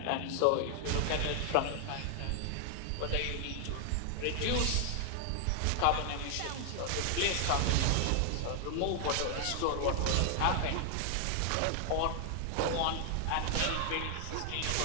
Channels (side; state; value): both; different; correlation 0.00